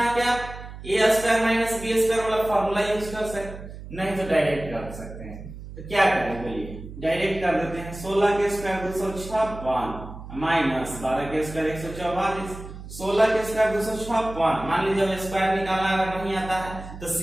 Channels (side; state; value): right; noise; hum, 13 dB below the sound